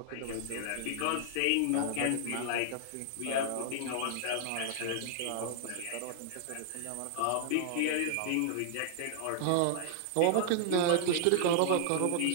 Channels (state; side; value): different; both; correlation -0.01